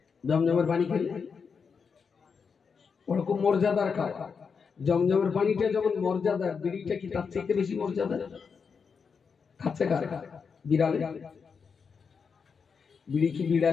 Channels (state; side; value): quieter; right; 5.8 dB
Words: জমজমের পানি খেলে ওরকম মর্যাদার খাবার। জমজমের পানিটা যেমন মর্যাদা, বিড়িটা কি তার থেকে বেশি মর্যাদা? খাচ্ছে কারা? বিড়ালে। বিড়ি কি